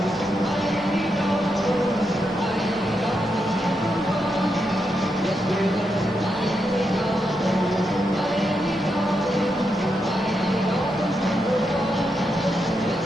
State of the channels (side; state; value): both; normal; correlation 0.84